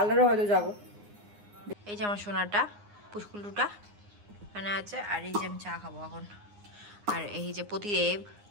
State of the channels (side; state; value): left; late; 9.7 ms